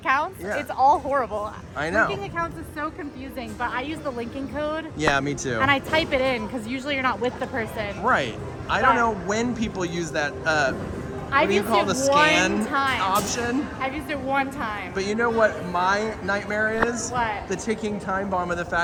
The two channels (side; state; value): both; identical; correlation 1.00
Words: Yeah. It's all horrible. I know. Linking accounts is so confusing, but I use the linking code Yeah, me too. and I type it in because usually you're not with the person. Right. I don't know when people use that, what I've do you used call it the scan one time. option? I've used it one time. But you know what my nightmare is? What? The ticking time bomb of the